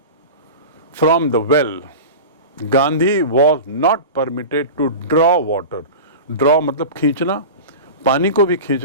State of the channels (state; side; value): inverted; both; correlation -0.31